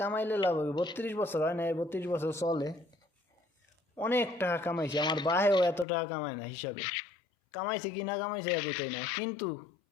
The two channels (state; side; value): drops out; right; at 5.9 s